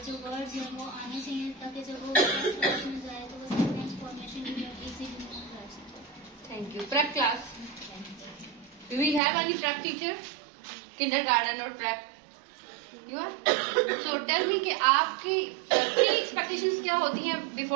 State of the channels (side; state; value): left; drops out; at 9.2 s